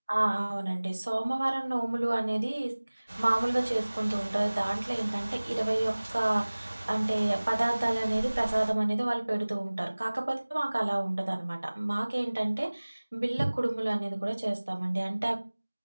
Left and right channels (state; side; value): inverted; both; correlation -1.00